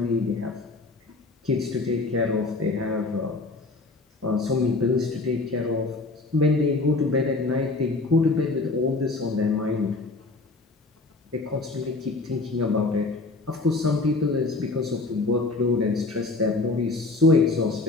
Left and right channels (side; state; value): right; quieter; 3.4 dB